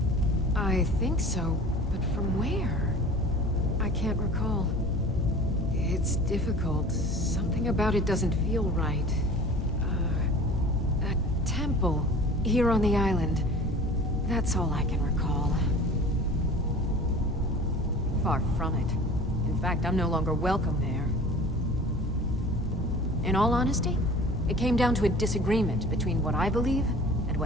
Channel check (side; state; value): both; normal; correlation 0.42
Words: I think so, but from where? I can't recall. It's difficult. Something about it doesn't feel right. A temple here on the island. That's all I can recall. Far from it. In fact, I'm no longer welcome there. In all honesty, it came down to a disagreement between what I believe and